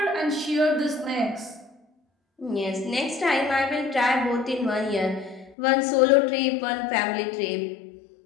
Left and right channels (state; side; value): drops out; right; at 5.6 s